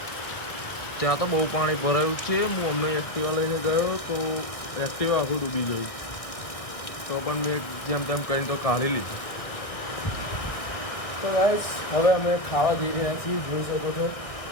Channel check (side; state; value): right; late; 1.6 ms